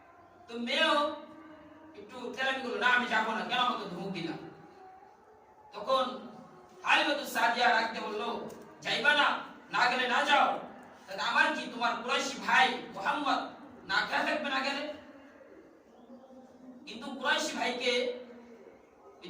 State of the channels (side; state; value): both; identical; correlation 1.00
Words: তো মেয়েও একটু তেরামি করলো, না আমি যাবো না, কেন আমাকে ধমক দিলাম। তখন হালিমাতুস সাদিয়া রাখতে বললো, যাইবা না, না গেলে না যাও, তাহলে আমার কি, তোমার কুরাইশি ভাই মুহাম্মদ না খেয়ে থাকবে না গেলে? কিন্তু কুরাইশি ভাইকে এই